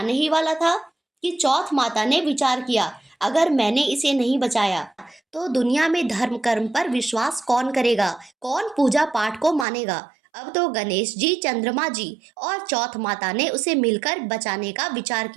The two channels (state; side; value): drops out; left; at 9.7 s